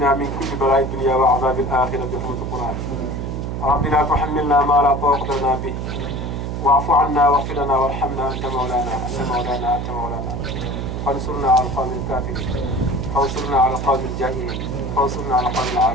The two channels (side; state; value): right; noise; hum, 4 dB below the sound